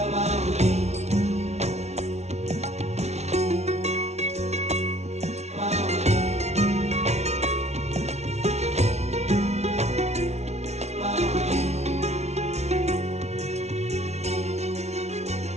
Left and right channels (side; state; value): left; late; 0.32 ms